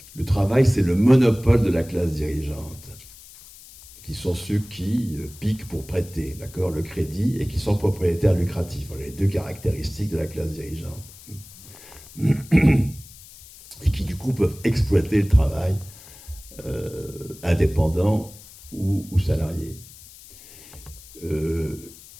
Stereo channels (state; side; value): noise; left; hiss, 20 dB below the sound